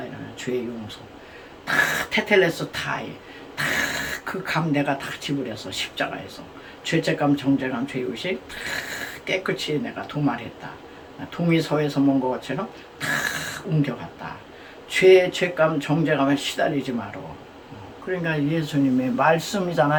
이러면 죄 용서 다 테텔레스 타이 다 그 감 내가 다 지불해서 십자가에서 죄책감 정죄감 죄의식 다 깨끗이 내가 도말했다. 동의서에서 먼 것처럼 다 옮겨갔다. 죄감 정죄감에 시달리지 마라. 그러니까 예수님의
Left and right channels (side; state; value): both; identical; correlation 1.00